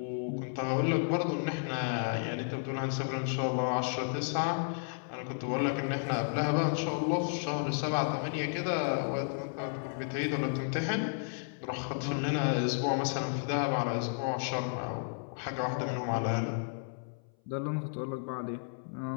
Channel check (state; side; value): silent; right; 56 dB below the other